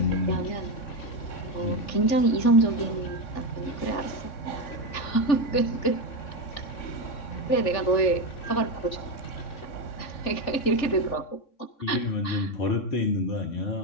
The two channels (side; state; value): right; late; 3.6 ms